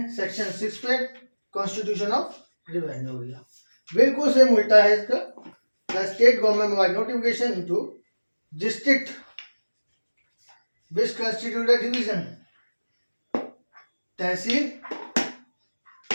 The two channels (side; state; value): both; inverted; correlation -1.00